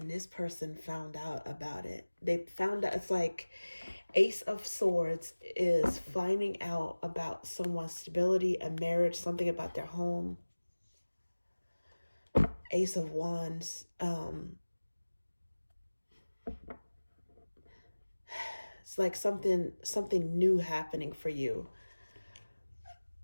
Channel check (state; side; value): inverted; both; correlation -1.00